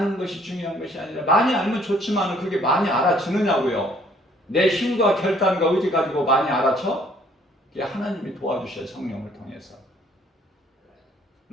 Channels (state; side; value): normal; both; correlation 0.61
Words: 것이 중요한 것이 아니라, 많이 알면 좋지만 그게 많이 알아주느냐고요. 내 힘과 결단과 의지 가지고 많이 알아쳐? 그게 하나님이 도와주셔요. 성령을 통해서.